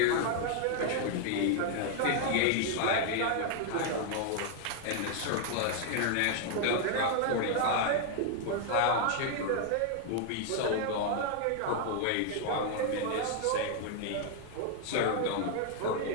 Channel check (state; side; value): different; both; correlation 0.00